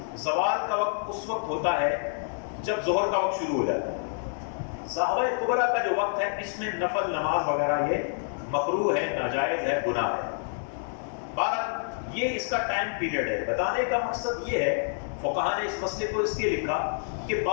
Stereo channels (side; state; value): right; silent; digital silence